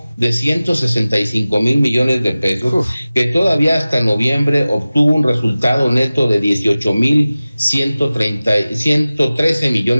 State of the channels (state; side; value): inverted; both; correlation -0.97